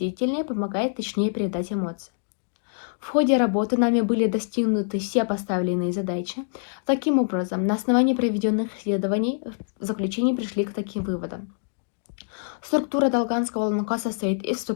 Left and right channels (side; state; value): right; silent; digital silence